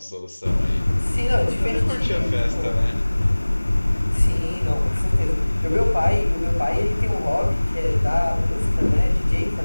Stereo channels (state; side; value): inverted; both; correlation -1.00